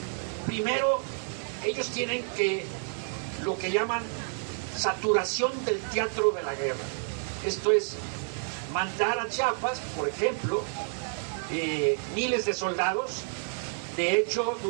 Primero, ellos tienen lo que llaman saturación del teatro de la guerra. Esto es, mandar a Chiapas, por ejemplo, miles de soldados. De hecho,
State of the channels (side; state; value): left; silent; 58 dB below the other